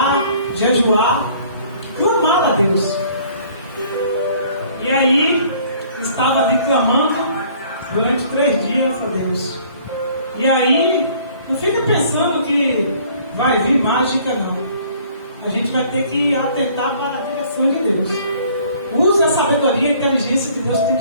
jejuar, clamar a Deus. E aí estava ali clamando durante 3 dias a Deus. E aí não fica pensando que vai vir mágica, não. A gente vai ter que atentar para a direção de Deus. Use a sabedoria e a inteligência que Deus tem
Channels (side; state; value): both; inverted; correlation -0.56